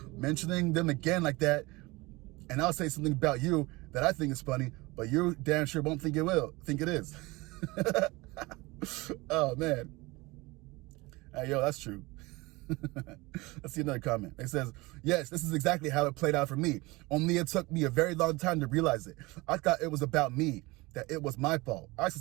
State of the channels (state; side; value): quieter; left; 22.8 dB